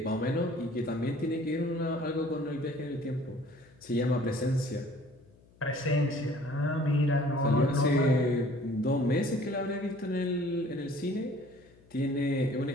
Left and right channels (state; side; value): noise; left; hum, 28 dB below the sound